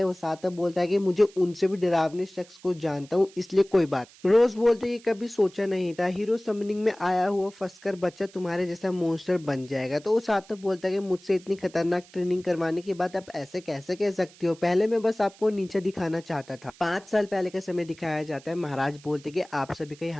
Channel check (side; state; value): right; noise; hiss, 24 dB below the sound